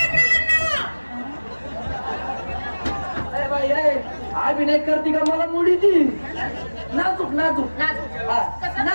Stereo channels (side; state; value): both; inverted; correlation -1.00